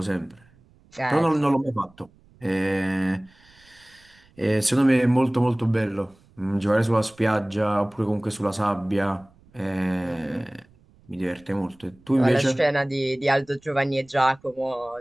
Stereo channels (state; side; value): noise; right; rumble, 30 dB below the sound